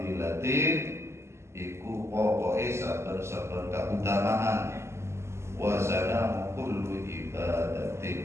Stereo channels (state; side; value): late; left; 0.13 ms